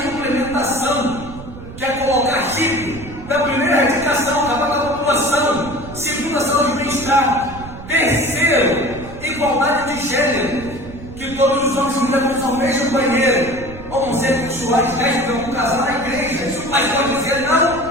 implementação, que é colocar chip. Da primeira, erradicação, acabar com a população. Segundo, a saúde e bem-estar. Terceiro, igualdade de gênero, que todos os homens e mulheres ao mesmo banheiro. Homossexuais, lésbicas, um casal na igreja. Se o pastor dizer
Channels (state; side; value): noise; right; rumble, 14 dB below the sound